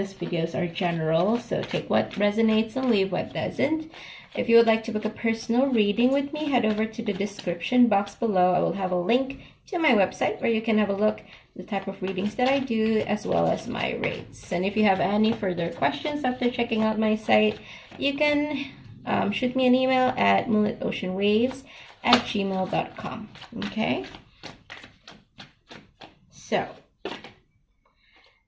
videos are general, so take what resonates and leave what doesn't. If you would like to book a personal reading with me, head over to the description box below. I will have a link to my website where you can have a look at the type of readings that I do, as well as my rates. And if you have any further questions after checking out my site, you can shoot me an email at moonlitoceanwaves@gmail.com. Okay, so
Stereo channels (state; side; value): identical; both; correlation 1.00